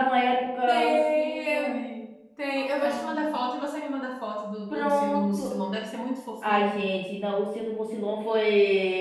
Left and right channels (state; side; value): identical; both; correlation 1.00